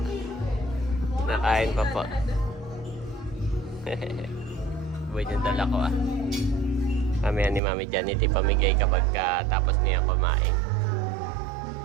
Nakain pa po. Buhay yung dala ko Mamaya ni Mami Janet ipamigay kapag tapos niya kumain.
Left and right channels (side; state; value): left; drops out; at 7.6 s